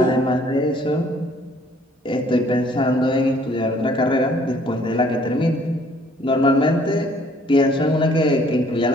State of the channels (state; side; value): normal; both; correlation 0.60